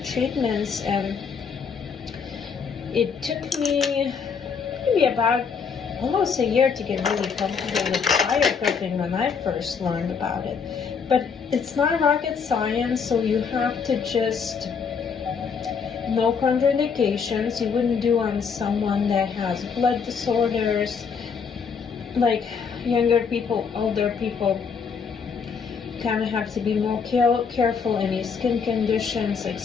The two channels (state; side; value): quieter; right; 6.1 dB